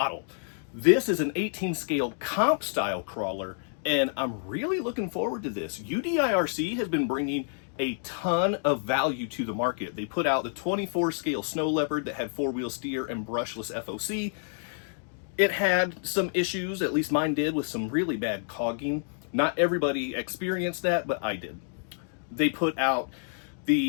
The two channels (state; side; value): silent; right; digital silence